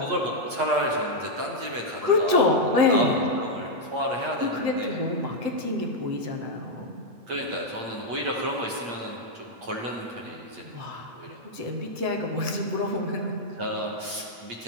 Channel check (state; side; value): late; left; 8.5 ms